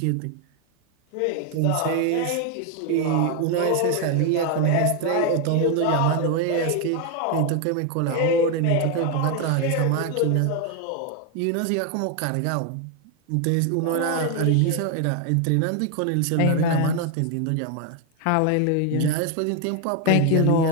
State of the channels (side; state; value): both; different; correlation 0.01